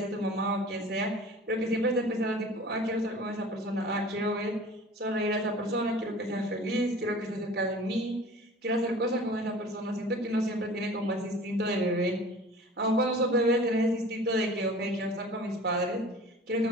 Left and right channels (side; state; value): both; normal; correlation 0.43